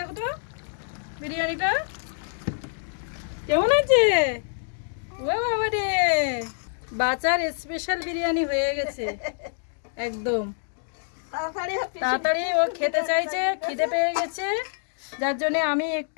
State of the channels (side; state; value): right; silent; digital silence